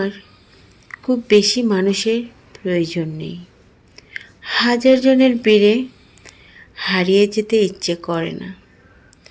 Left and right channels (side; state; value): both; identical; correlation 1.00